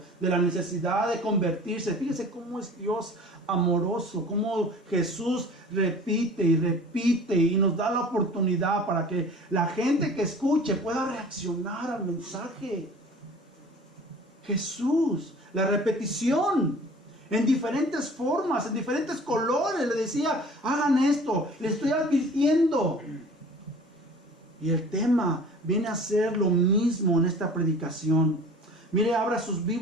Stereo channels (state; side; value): normal; both; correlation 0.45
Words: de la necesidad de convertirse. Fíjese cómo es Dios amoroso, cómo Jesús repite y repite y nos da la oportunidad para que la gente que escuche pueda reaccionar al mensaje. Jesús, la repetición en diferentes formas, en diferentes colores, le decía, hagan esto, le estoy advirtiendo. Y el tema viene a ser lo mismo en esta predicación. Mire, abra sus